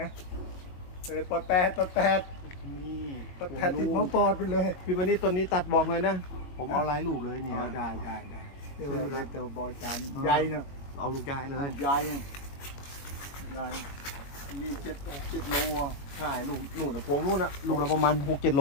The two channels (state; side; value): late; right; 21 ms